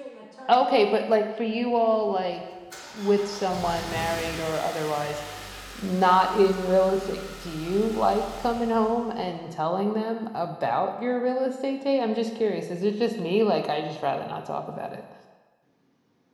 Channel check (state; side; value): identical; both; correlation 1.00